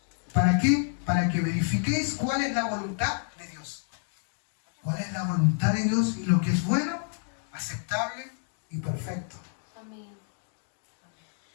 ¿Para qué? Para que verifiquéis cuál es la voluntad de Dios. ¿Cuál es la voluntad de Dios y lo que es bueno, aceptable y perfecto? Amén.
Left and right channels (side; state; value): right; silent; 59 dB below the other